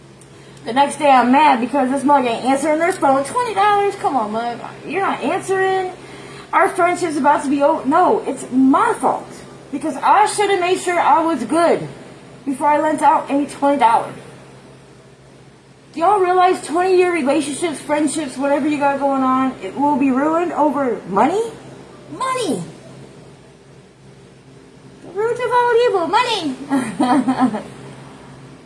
The next day I'm mad because this mug ain't answering their phone. $20? Come on, mug. You're not answering. Our friendship's about to be over. No, it's my fault. Because I should have made sure I was good before I lent out any $20. Do y'all realize 20-year relationships, friendships, whatever you got going on, it will be ruined over money? Money! The root of all evil, money!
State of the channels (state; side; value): identical; both; correlation 1.00